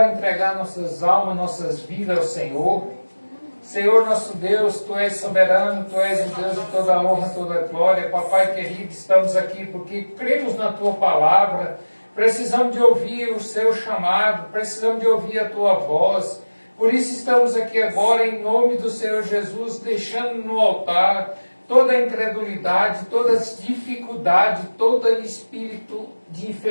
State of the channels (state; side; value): inverted; both; correlation -1.00